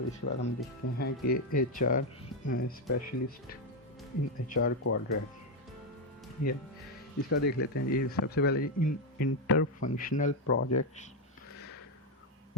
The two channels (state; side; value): normal; both; correlation 0.05